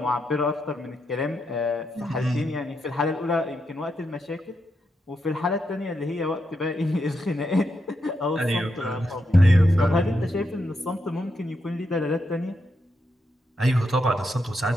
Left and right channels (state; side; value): normal; both; correlation 0.83